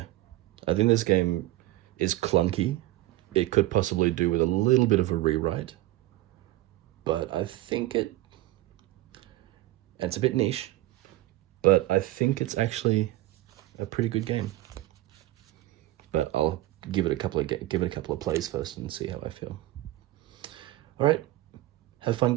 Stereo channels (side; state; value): left; quieter; 17.0 dB